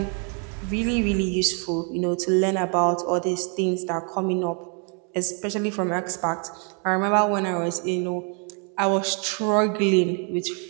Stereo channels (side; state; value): left; quieter; 39.0 dB